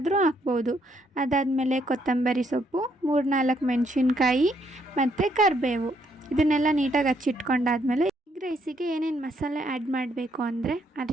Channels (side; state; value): both; normal; correlation 0.72